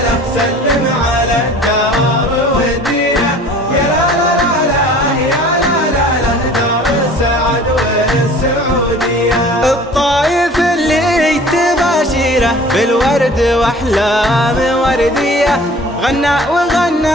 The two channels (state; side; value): normal; both; correlation 0.47